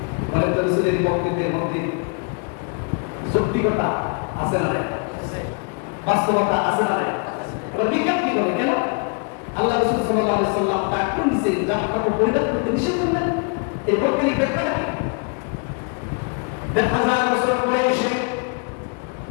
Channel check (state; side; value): quieter; right; 35.5 dB